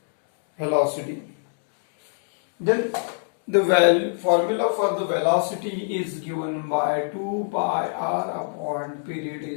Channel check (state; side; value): silent; right; digital silence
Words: velocity. Then the formula for the velocity is given by 2 pi r upon period